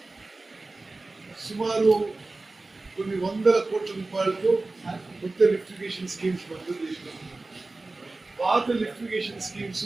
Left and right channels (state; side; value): quieter; left; 3.3 dB